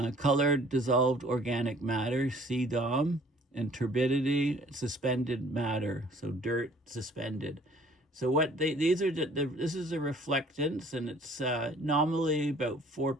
dissolved organic matter, CDOM, and turbidity, suspended matter, so dirt suspended. So this is the reflectance, and it's nominally about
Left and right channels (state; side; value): normal; both; correlation 0.55